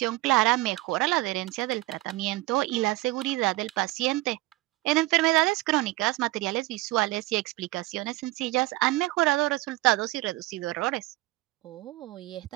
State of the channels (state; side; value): quieter; left; 19.6 dB